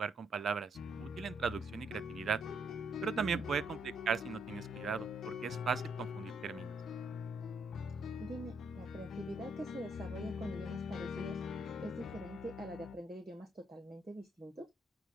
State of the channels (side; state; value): both; normal; correlation 0.73